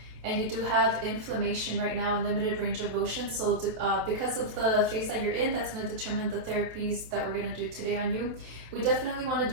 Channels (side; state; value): left; late; 27 ms